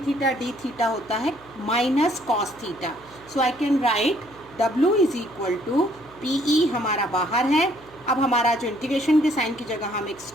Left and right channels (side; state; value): right; noise; hum, 26 dB below the sound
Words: theta d theta होता है minus cos theta. So I can write W is equal to PE हमारा बाहर है। अब हमारा जो इंटीग्रेशन के साइन की जगह हम एक